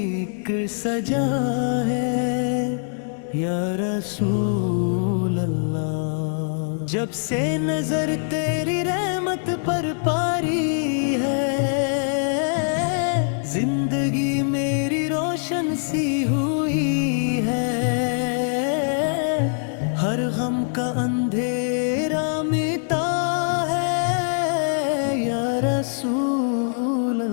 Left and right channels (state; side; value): silent; right; digital silence